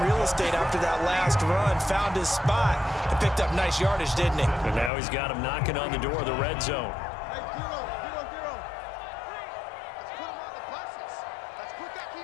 real estate after that last run. Found his spot and picked up nice yardage, didn't he? And now he's got him knocking on the door of the red zone.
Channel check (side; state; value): right; drops out; at 4.9 s